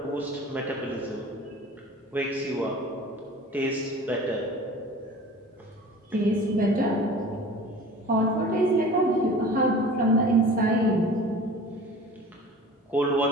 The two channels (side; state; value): both; normal; correlation 0.42